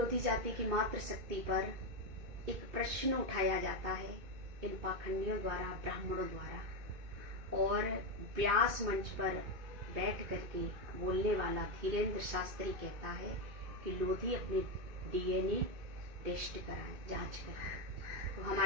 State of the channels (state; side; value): late; left; 2.5 ms